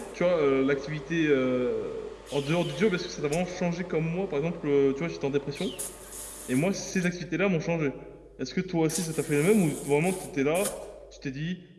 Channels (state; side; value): identical; both; correlation 1.00